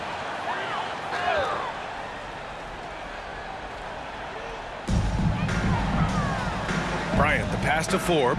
Bryant, the pass to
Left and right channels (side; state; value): both; identical; correlation 1.00